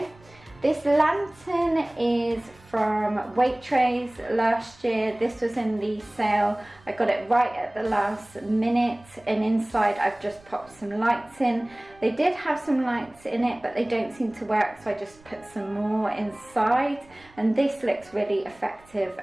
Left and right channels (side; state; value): right; noise; rumble, 27 dB below the sound